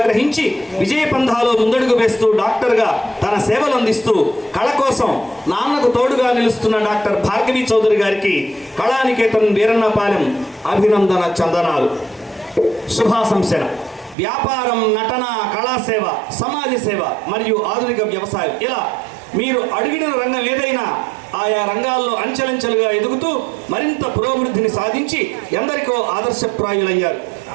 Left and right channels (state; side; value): drops out; left; at 14.2 s